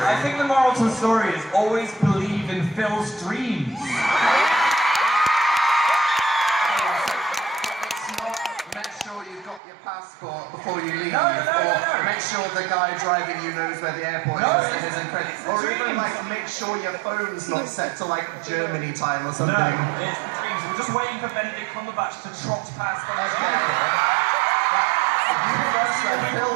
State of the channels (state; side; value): drops out; left; at 9.6 s